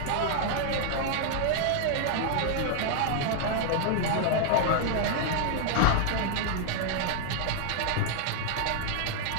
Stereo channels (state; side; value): different; both; correlation 0.00